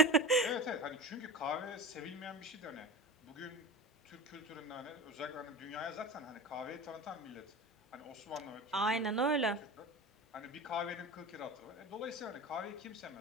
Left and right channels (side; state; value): both; normal; correlation 0.31